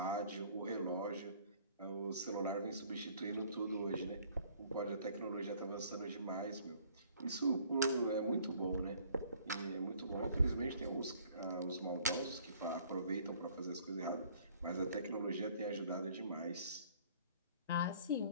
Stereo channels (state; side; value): inverted; both; correlation -0.57